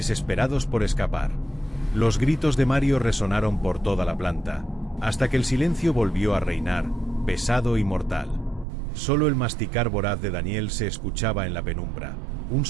por escapar. Los gritos de Mario resonaron por toda la planta, hasta que el silencio volvió a reinar, pesado y mortal. Solo el masticar voraz de Daniel se escuchaba en la penumbra, un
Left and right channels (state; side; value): drops out; left; at 8.7 s